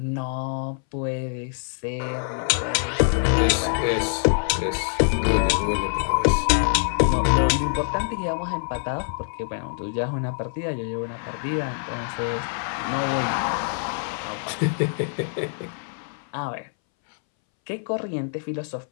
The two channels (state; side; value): silent; right; 62 dB below the other